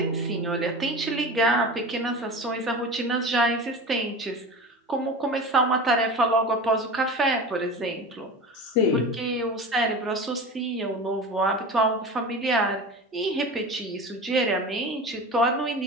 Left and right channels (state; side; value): normal; both; correlation 0.31